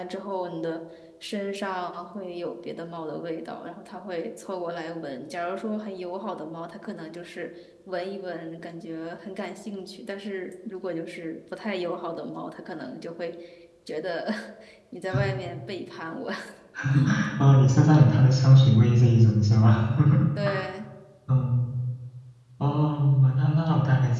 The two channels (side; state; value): both; identical; correlation 1.00